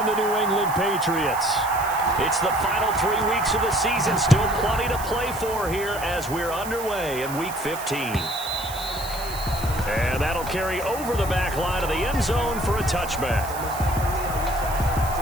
the New England Patriots. It's the final 3 weeks of the season. Still plenty to play for here as we're underway in Week 15. And that'll carry over the back line of the end zone for a touchback.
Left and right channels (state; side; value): noise; right; hiss, 12 dB below the sound